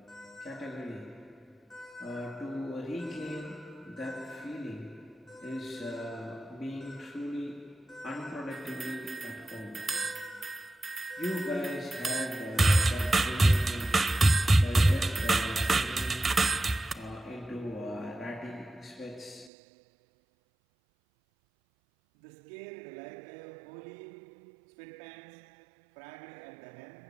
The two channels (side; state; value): left; drops out; at 19.5 s